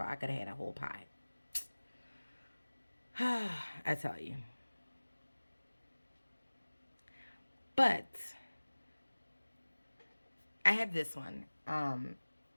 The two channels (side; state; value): both; inverted; correlation -1.00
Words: I could have had a whole pie. I tell you. But I have this one, and